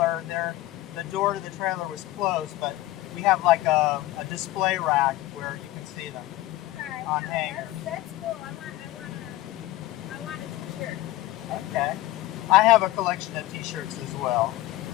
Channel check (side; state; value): right; quieter; 16.9 dB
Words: The door to the trailer was closed, but we have like a display rack where you can see them Right. on hangers. That's cool. I want a t-shirt. Okay. I have a collection of t-shirts as well.